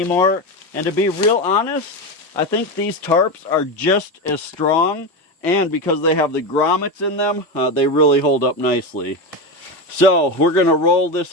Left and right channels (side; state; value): both; normal; correlation 0.17